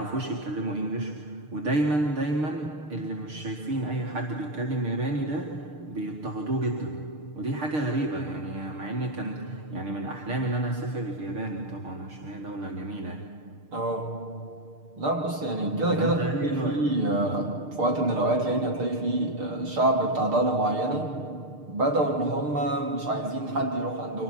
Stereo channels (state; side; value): late; left; 6.6 ms